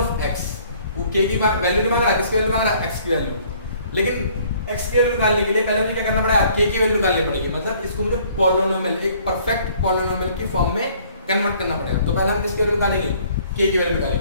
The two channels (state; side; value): inverted; both; correlation -0.59